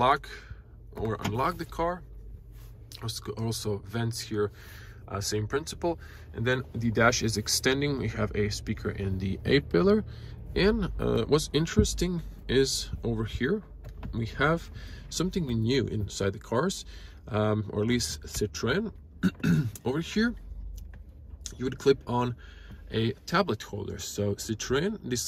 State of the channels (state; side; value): identical; both; correlation 1.00